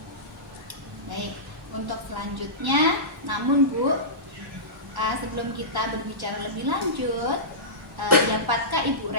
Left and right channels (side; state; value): both; normal; correlation -0.19